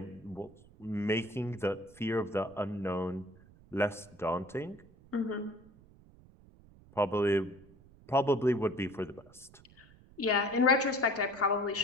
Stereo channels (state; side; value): noise; right; rumble, 24 dB below the sound